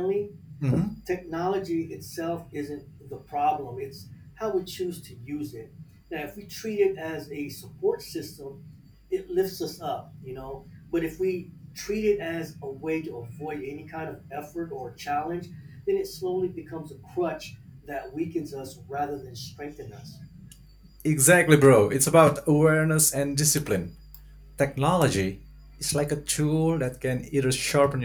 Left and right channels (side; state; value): both; identical; correlation 1.00